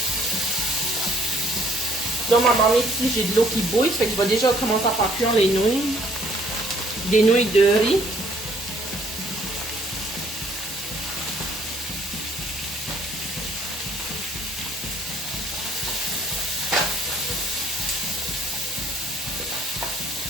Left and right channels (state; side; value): normal; both; correlation 0.62